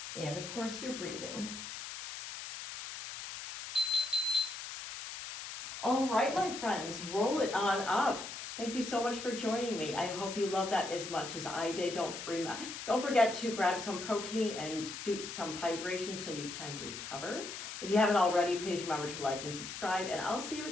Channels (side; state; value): left; noise; hiss, 8 dB below the sound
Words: And of course, you're breathing. All right, my friends, roll it on up. Thank you so much for joining me. I hope you love that as much as I did. Don't forget to grab some protein and do some hydration so you can recover. If you haven't already, please remember to like and subscribe, and I'll see you